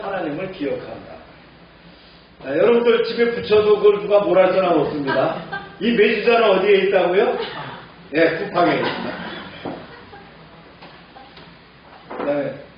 기억한다. 여러분들 집에 붙여도 그걸 누가 뭐라 할 사람 없습니다. 이 메주자는 어디에 있다고요? 쿠팡에 있습니다. 그다음에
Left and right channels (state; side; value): identical; both; correlation 1.00